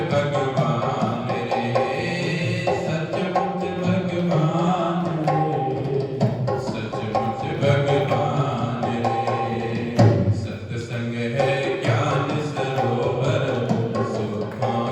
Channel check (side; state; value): both; identical; correlation 1.00